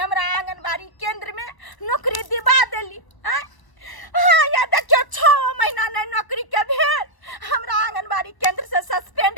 आंगनबाड़ी केंद्र में नौकरी दिवा देली हैं? हाँ या देखियो 6 महीना नहीं नौकरी के भेल, हमरा आंगनबाड़ी केंद्र से सस्पेंड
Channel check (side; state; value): right; late; 1.0 ms